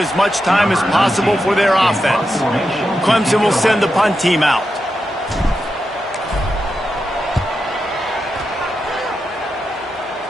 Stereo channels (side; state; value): both; normal; correlation 0.87